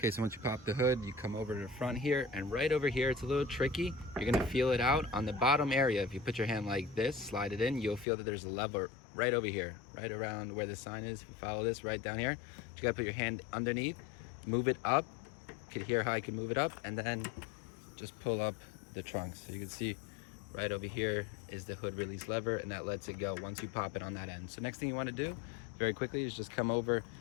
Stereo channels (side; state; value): right; drops out; at 8.1 s